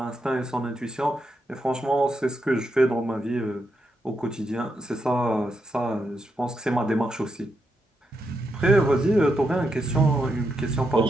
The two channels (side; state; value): both; normal; correlation 0.83